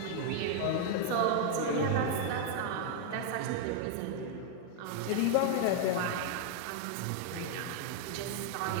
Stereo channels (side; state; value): both; different; correlation 0.00